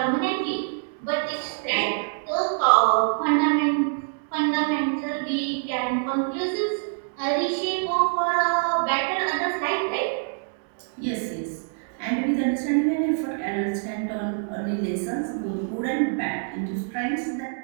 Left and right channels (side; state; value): left; silent; 61 dB below the other